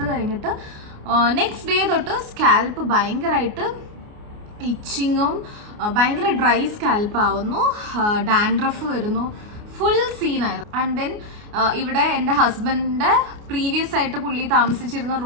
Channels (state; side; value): late; left; 29 ms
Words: കഴിഞ്ഞിട്ട് നെക്സ്റ്റ് ഡേ തൊട്ട് സ്കാൽപ്പ് ഭയങ്കരമായിട്ട് ഇച്ചിങ്ങും ഭയങ്കര ഡ്രൈ സ്കാൽപ്പ് ആവുന്നു, ഡാൻഡ്രഫ് വരുന്നു, ഫുൾ സീനായിരുന്നു. ആൻഡ് ദെൻ ഇവിടെ എൻ്റെ ഹസ്ബൻഡിൻ്റെ പ്രീവിയസ് ആയിട്ട് പുള്ളി താമസിച്ചിരുന്ന